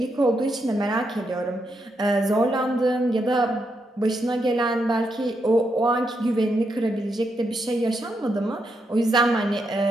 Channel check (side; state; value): both; normal; correlation 0.81